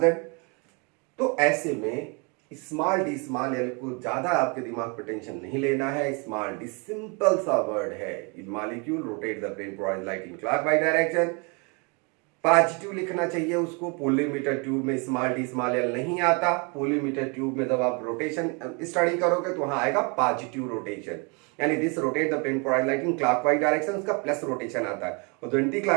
तो ऐसे में स्मॉल डी स्मॉल एल को ज्यादा आपके दिमाग पर टेंशन नहीं लेना है। स्मॉल डी सिंपल सा वर्ड है, molecule rotate the plane polarised light in clockwise direction. Positive लिखना चाहिए उसको। पोलीमीटर ट्यूब में स्मॉल डी स्मॉल एल नहीं आता। पोलीमीटर ट्यूब में जब आप रोटेशन स्टडी करोगे तो वहां आएगा पॉजिटिव रोटेशन, यानी this rotate the plane polarised light in clockwise direction, उसका प्लस रोटेशन आता है, और एंटी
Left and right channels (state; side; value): quieter; left; 32.7 dB